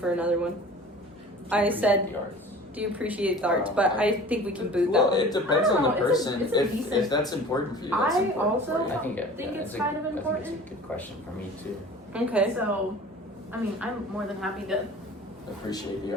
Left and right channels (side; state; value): both; normal; correlation 0.42